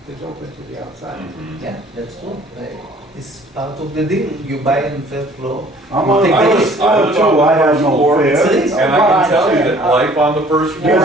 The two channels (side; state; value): both; normal; correlation 0.54